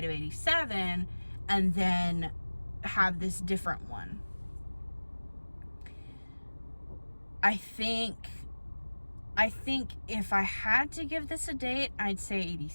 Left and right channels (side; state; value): both; inverted; correlation -1.00